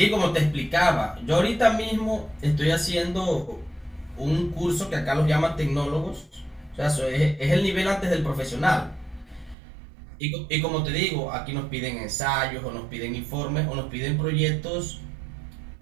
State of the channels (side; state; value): left; drops out; at 9.6 s